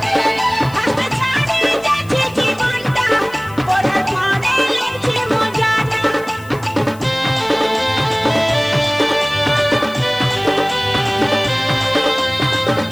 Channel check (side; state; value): left; noise; hiss, 23 dB below the sound